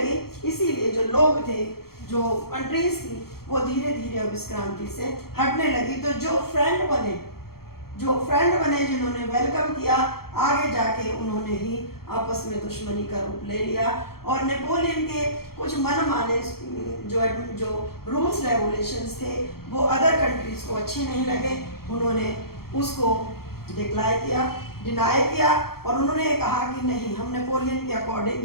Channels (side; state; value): right; late; 0.94 ms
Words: इसीलिए जो लोग थे, जो कंट्रीज थी, वो धीरे धीरे अब इस क्रांति से हटने लगी। तो जो फ्रेंड बने जिन्होंने वेलकम किया, आगे जाके उन्होंने ही आपस में दुश्मनी का रूप ले लिया और नेपोलियन के कुछ मनमाने जो रूल्स रेगुलेशंस थे वो अदर कंट्रीज को अच्छे नहीं लगे। उन्होंने उसको डिनाई किया और उन्होंने कहा कि नहीं, हम नेपोलियन के अकॉर्डिंग